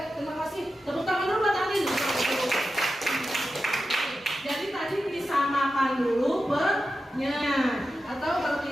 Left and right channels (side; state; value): both; normal; correlation 0.91